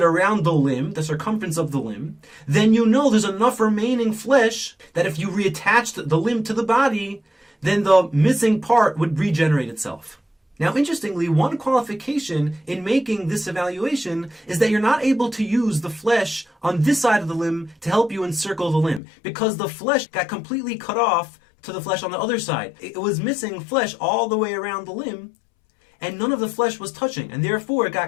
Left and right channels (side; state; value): right; drops out; at 19.0 s